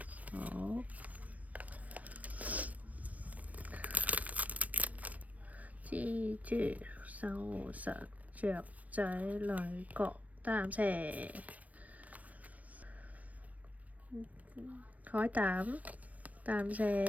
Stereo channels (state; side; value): late; left; 0.070 ms